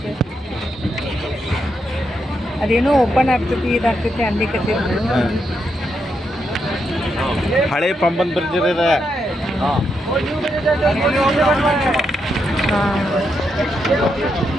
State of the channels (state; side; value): normal; both; correlation 0.81